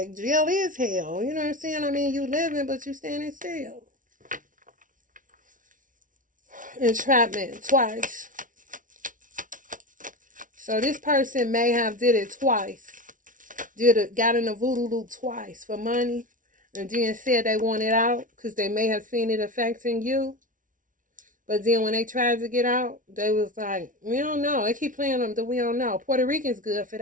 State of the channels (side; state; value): left; late; 0.38 ms